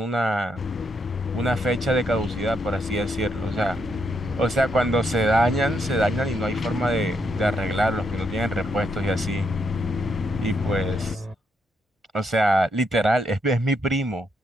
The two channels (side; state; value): both; normal; correlation 0.77